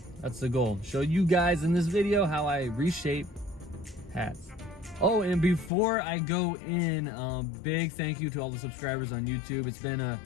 that's the goal. Show you guys in this video how I reshape hats. Oh, and before I go in, big thank you to all the subscribers on YouTube. It's been a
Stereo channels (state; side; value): drops out; right; at 5.7 s